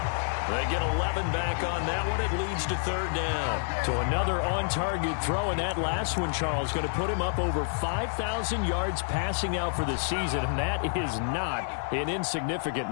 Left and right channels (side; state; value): right; silent; 59 dB below the other